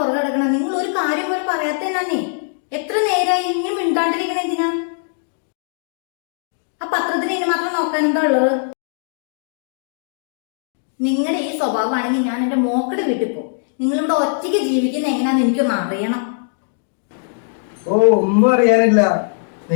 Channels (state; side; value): silent; right; digital silence